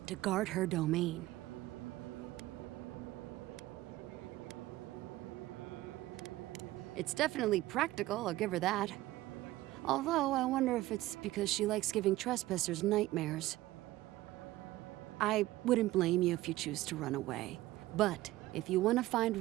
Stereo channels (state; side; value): quieter; left; 16.9 dB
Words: to guard her domain. It's definitely practical, I'll give her that. Although, I wonder if it's because she likes giving trespassers nightmares. I wouldn't blame you if you choose to run away. But, if you want to find